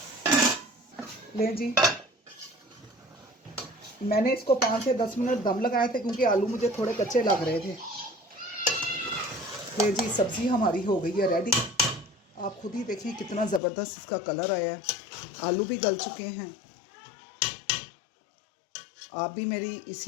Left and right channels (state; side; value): drops out; right; at 13.6 s